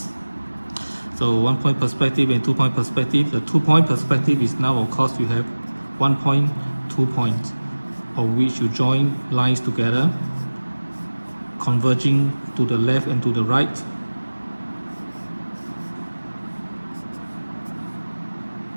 So 1 point perspective and 2 point perspective. The 2 point perspective is now, of course, you have 1 point, 2 points, of which you join lines together, converging to the left and to the right.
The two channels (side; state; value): both; inverted; correlation -1.00